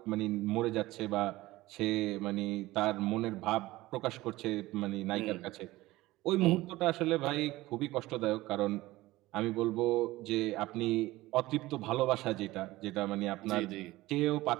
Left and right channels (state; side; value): quieter; left; 18.2 dB